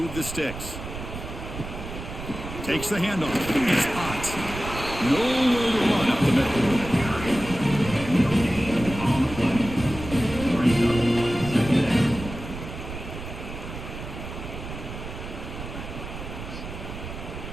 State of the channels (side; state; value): right; noise; rumble, 9 dB below the sound